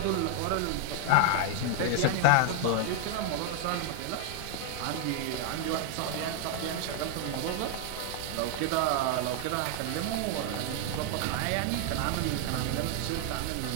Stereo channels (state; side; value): different; both; correlation 0.00